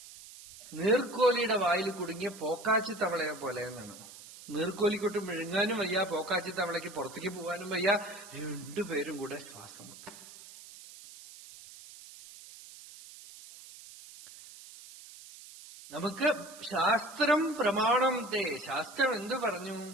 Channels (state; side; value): noise; right; hiss, 17 dB below the sound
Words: നീർക്കോലിയുടെ വായിൽ കുടുങ്ങിയ പോക്കാച്ചി തവളയെ പോലെ എന്നാണ്. നീർക്കോലിക്കൊട്ട് വിഴുങ്ങാനും വയ്യ, പോക്കാച്ചി തവളയ്ക്ക് പുറത്തേക്ക് പോകാനും വയ്യ, രണ്ടുപേരും കൂടെ ശ്വാസം മുട്ടും. നമുക്ക് ശാസ്ത്രം പ്രമാണം ശാസ്ത്രം എന്ത് പറഞ്ഞു?